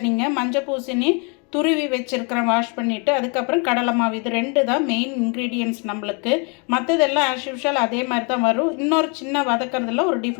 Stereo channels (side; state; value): right; quieter; 35.0 dB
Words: மஞ்சள் பூசணி துருவி வச்சுருக்கிறேன், வாஷ் பண்ணிவிட்டு. அதுக்கப்புறம் கடலை மாவு. இது ரெண்டு தான் மெயின் இன்க்ரீடியன்ட்ஸ் நம்மளுக்கு. மற்றதெல்லாம் ஆஸ் யூஷுவல் அதே மாதிரி தான் வரும். இன்னொரு சின்ன வதக்கிறதுல ஒரு